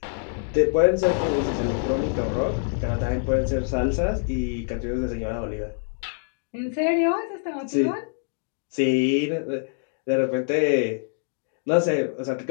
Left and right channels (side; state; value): right; silent; digital silence